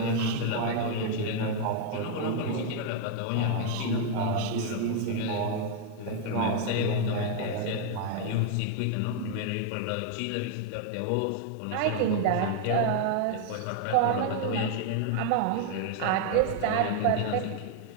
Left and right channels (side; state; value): both; different; correlation 0.00